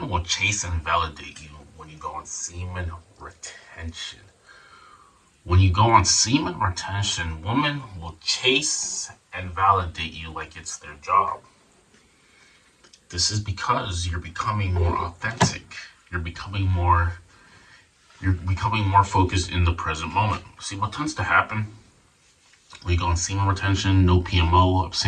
will chase and validate you when you go on semen retention. When you go on semen retention, women will chase and validate you like it's their job. This is because you're becoming more authentic. You're becoming more you're becoming more focused in the present moment. See what tends to happen? We go on semen retention, no PMO,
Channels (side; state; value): both; identical; correlation 1.00